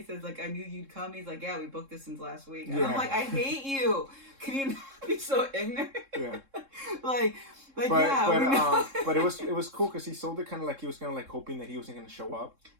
says like, I knew you'd come. He's like, yeah, we booked this since last week. And I'm like, I hate you. Can you not be so ignorant? Yeah. But it was cool because he sold it kind of like he was kind of like hoping that he wasn't going to show up.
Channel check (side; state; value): left; late; 3.7 ms